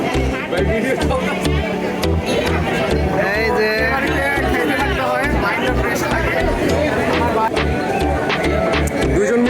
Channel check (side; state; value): both; identical; correlation 1.00